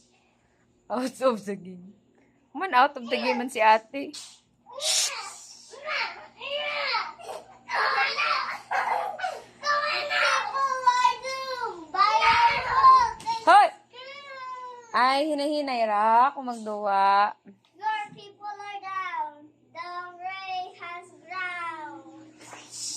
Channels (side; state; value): both; identical; correlation 1.00